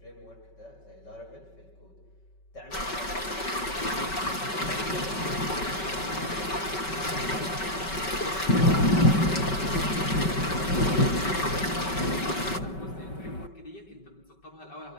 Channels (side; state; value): right; late; 5.3 ms